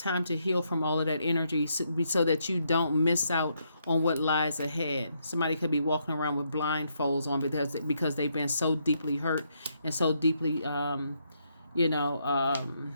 to heal from all of that energy so that you don't miss out on what lies ahead. Somebody could be walking around with blindfolds on because they've been so deeply hurt and so deeply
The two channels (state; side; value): inverted; both; correlation -0.76